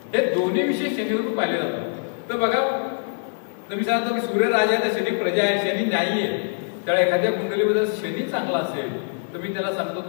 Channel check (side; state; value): right; silent; digital silence